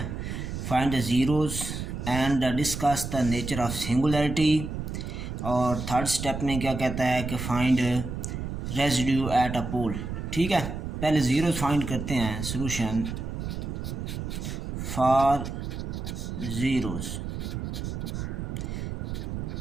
Find the zeros and discuss the nature of singularity. और थर्ड स्टेप में क्या कहता है कि फाइंड रेजिड्यू एट अ पोल। ठीक है, पहले ज़ीरोज़ फाइंड करते हैं। Solution for zeros.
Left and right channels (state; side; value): noise; right; rumble, 5 dB below the sound